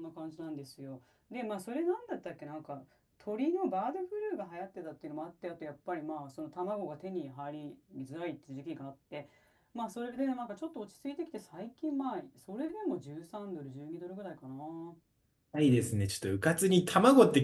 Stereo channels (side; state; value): both; identical; correlation 1.00